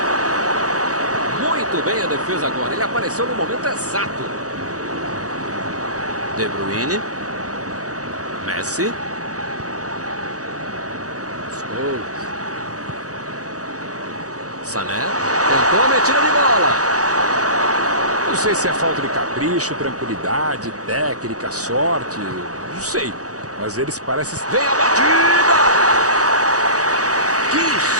Muito bem a defesa agora. Ele apareceu no momento exato. De Bruyne. Messi. Scholes. Sané. Tentou a metida de bola. Não sei se é falta de capricho, tranquilidade, técnica, sorte. Não sei. Mas eles parecem... Vem a batida! Que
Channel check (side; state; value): left; late; 0.66 ms